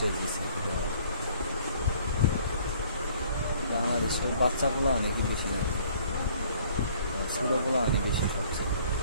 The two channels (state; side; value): inverted; both; correlation -0.57